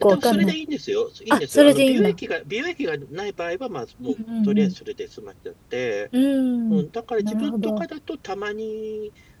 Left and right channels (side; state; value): both; identical; correlation 1.00